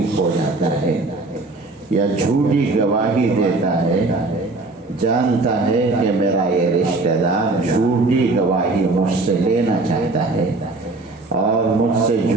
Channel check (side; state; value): left; quieter; 3.3 dB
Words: ہو جاتا ہے یا جھوٹی گواہی دیتا ہے، جانتا ہے کہ میرا یہ رشتہ دار جھوٹی گواہی مجھ سے لینا چاہتا ہے اور مجھ سے